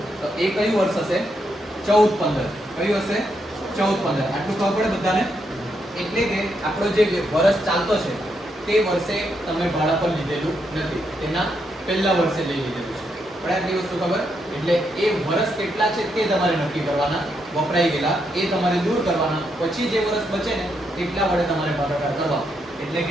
તો એ કયું વર્ષ હશે? 14/15. કયું હશે? 14/15. આટલું ખબર પડે બધાને? એટલે કે આપણો જે વર્ષ ચાલતો છે તે વર્ષે તમે ભાડા પર લીધેલું નથી, તેના પહેલા વર્ષે લઈ લીધેલું છે. પણ આટલી વસ્તુ ખબર. એટલે એ વર્ષ કેટલા છે તે તમારે નક્કી કરવાના, વપરાઈ ગયેલા એ તમારે દૂર કરવાના, પછી જે વર્ષ બચે ને એટલા વડે તમારે ભાગાકાર કરવા. એટલે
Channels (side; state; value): both; normal; correlation 0.79